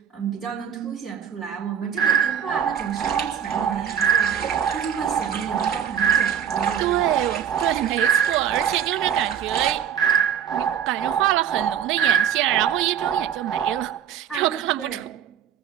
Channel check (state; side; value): quieter; left; 8.8 dB